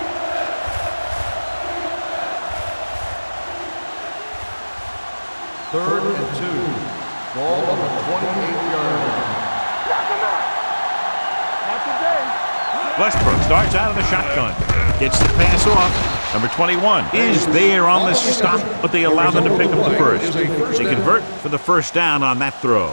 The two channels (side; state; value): both; inverted; correlation -1.00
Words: Third and 2. Ball on the 28-yard line. Knock him out. Not today. Westbrook starts out of the shotgun. Gets the pass off. Number 21 is there on the stop, but they allow them to pick up the first. They convert for the first down on that throw.